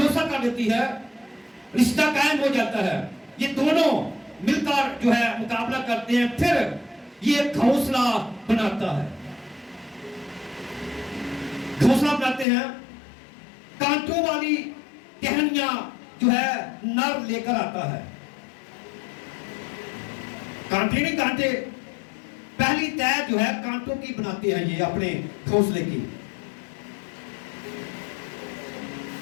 कर लेती है, रिश्ता कायम हो जाता है। ये दोनों मिलकर जो है मुकाबला करते हैं। फिर ये घोंसला बनाता है, घोंसला बनाते हैं। कांटों वाली टहनियां जो है नर लेकर आता है। कांटे नहीं, कांटे पहली तय जो है कांटों की बनाते हैं ये अपने घोंसले की।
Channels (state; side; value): drops out; right; at 12.5 s